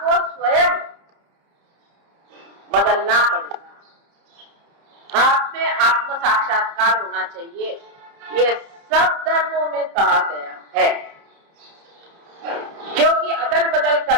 स्वयं बदलना पड़ेगा। आप में आत्म साक्षात्कार होना चाहिए, ये सब धर्मों में कहा गया है। क्योंकि अदल बदल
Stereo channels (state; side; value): late; left; 30 ms